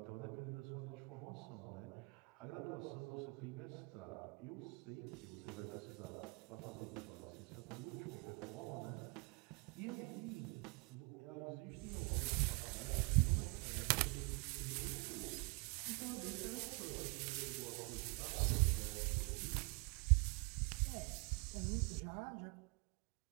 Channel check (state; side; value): quieter; left; 31.1 dB